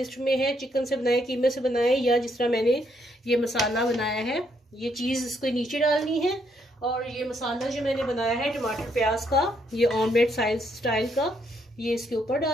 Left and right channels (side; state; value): both; normal; correlation 0.73